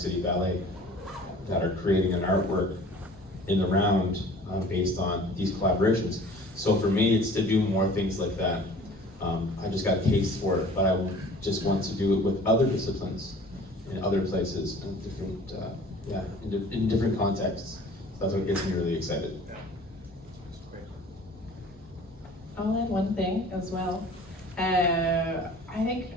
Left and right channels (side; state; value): both; normal; correlation 0.47